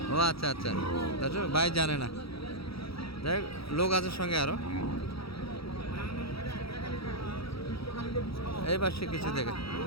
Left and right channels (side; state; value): right; late; 0.76 ms